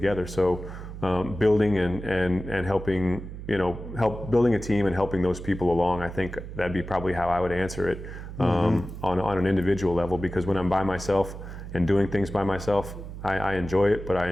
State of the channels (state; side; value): noise; right; hum, 10 dB below the sound